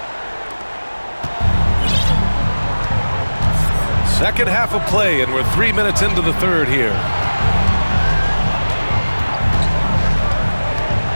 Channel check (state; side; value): inverted; both; correlation -1.00